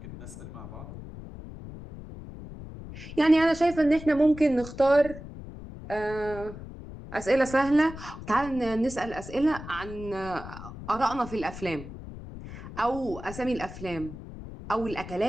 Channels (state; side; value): noise; left; rumble, 13 dB below the sound